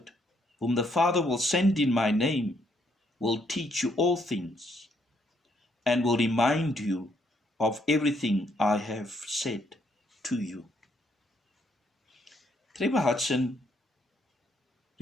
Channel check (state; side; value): normal; both; correlation 0.72